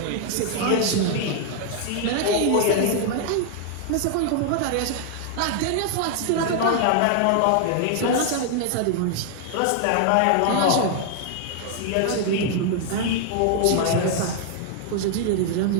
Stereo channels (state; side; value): different; both; correlation 0.00